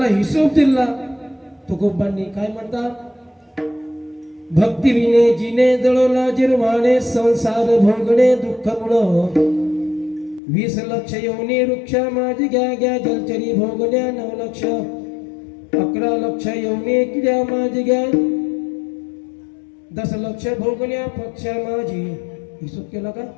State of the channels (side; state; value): right; drops out; at 10.4 s